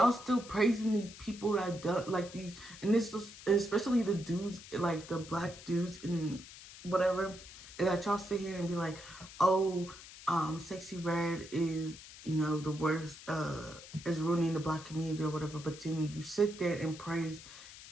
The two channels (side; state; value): left; noise; hiss, 16 dB below the sound